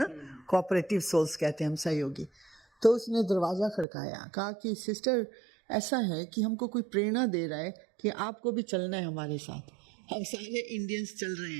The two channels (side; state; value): left; drops out; at 3.9 s